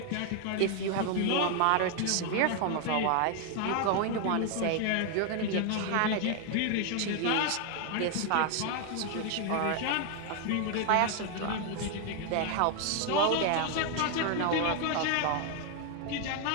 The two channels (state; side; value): different; both; correlation 0.00